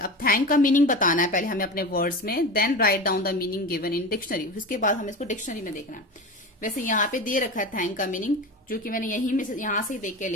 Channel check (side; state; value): both; normal; correlation 0.27